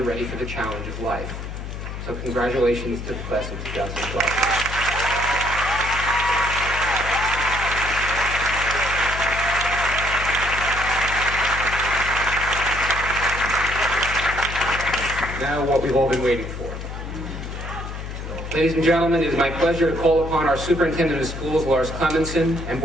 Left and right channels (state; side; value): noise; left; hum, 8 dB below the sound